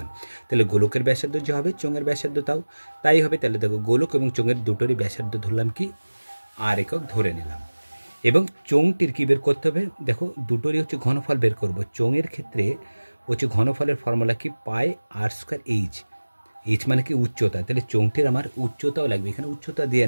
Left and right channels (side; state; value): both; inverted; correlation -1.00